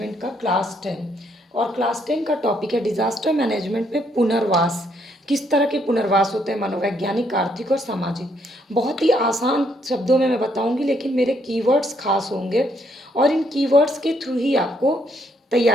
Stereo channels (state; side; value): normal; both; correlation 0.71